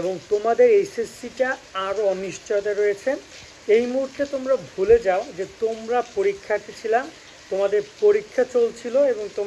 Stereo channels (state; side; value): identical; both; correlation 1.00